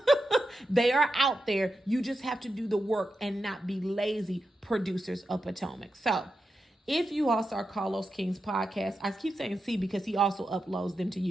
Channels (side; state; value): both; normal; correlation 0.88